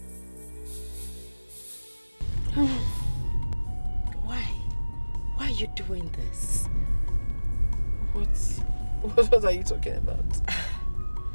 Why are you doing this? What are you talking about?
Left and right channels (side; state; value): both; inverted; correlation -1.00